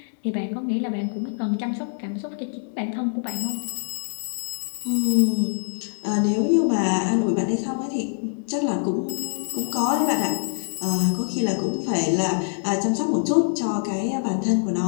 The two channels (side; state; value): right; silent; 62 dB below the other